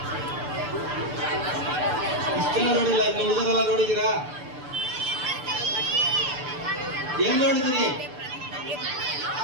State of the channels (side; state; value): left; late; 6.8 ms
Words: ಇಷ್ಟೆಲ್ಲ ನೋಡಿಲ್ಲ, ಇನ್ನು ಉಳಿದರೆಲ್ಲ ನೋಡಿದೀರಾ? ಎಲ್ಲಿ ನೋಡಿದಿರಿ?